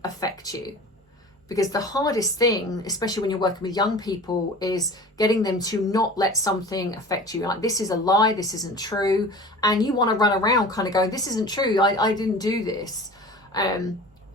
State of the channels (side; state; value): both; normal; correlation 0.39